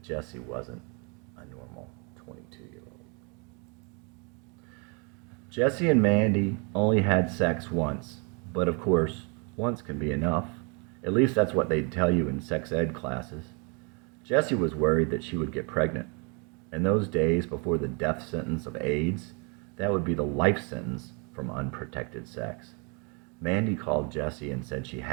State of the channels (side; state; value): left; quieter; 34.0 dB